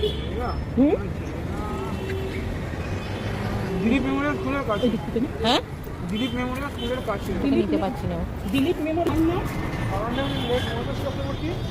হুম, দিলীপ মেমোরিয়াল স্কুলের কাছে। ওই দিক থেকে না? হ্যাঁ, দিলীপ মেমোরিয়াল স্কুলের কাছে। নিতে পারছি না। দিলীপ মেমোরিয়াল না? আমার নাম মনোজ চক্রবর্তী।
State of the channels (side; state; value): both; identical; correlation 1.00